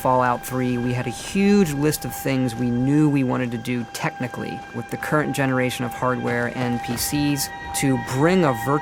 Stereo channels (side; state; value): both; identical; correlation 1.00